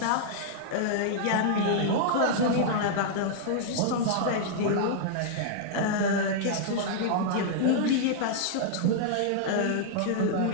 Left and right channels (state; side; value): different; both; correlation -0.02